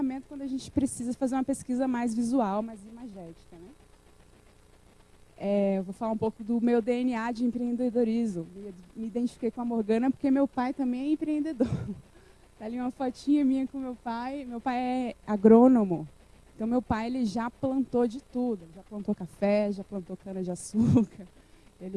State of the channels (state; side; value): identical; both; correlation 1.00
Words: quando a gente precisa fazer uma pesquisa mais visual, mais imagética, né? Eu vou falar um pouco do meu DNA de empreendedorismo. Me identifiquei com a Morgana porque meu pai também é empreendedor. Tá ali uma fotinha minha com meu pai. Meu pai é agrônomo. Então, meu pai ele já plantou de tudo. Já plantou café, já plantou cana-de-açúcar.